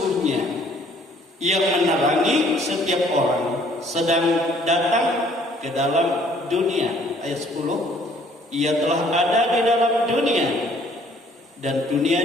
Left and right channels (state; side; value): normal; both; correlation 0.59